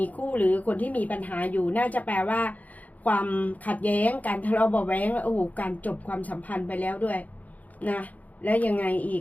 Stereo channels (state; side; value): late; right; 0.076 ms